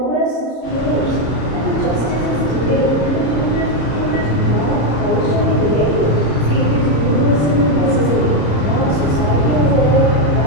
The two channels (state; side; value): late; right; 33 ms